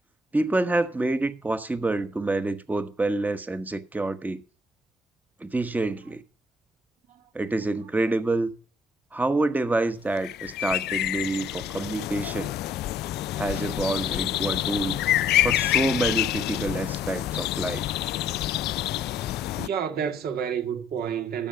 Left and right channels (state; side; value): normal; both; correlation 0.64